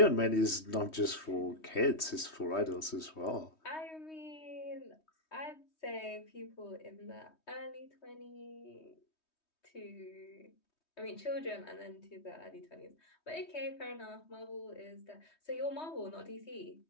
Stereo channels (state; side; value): late; right; 3.2 ms